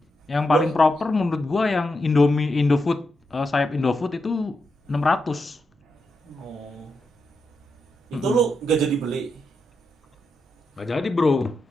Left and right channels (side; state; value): both; normal; correlation 0.85